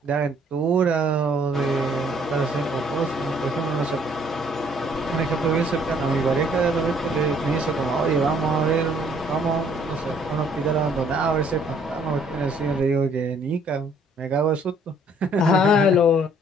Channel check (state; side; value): normal; both; correlation 0.62